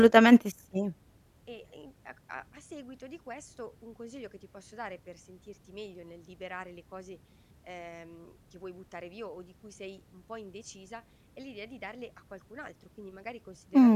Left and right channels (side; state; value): both; identical; correlation 1.00